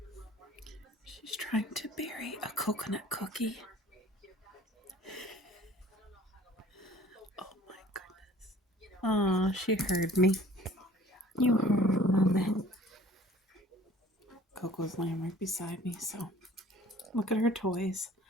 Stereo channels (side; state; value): both; normal; correlation 0.51